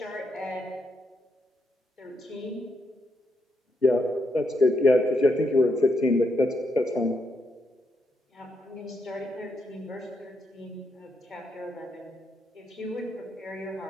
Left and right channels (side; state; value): both; normal; correlation 0.79